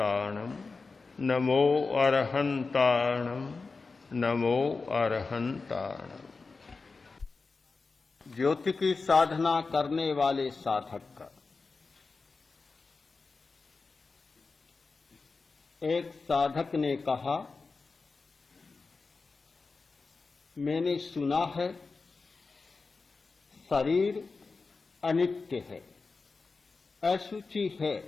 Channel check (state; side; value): quieter; right; 4.2 dB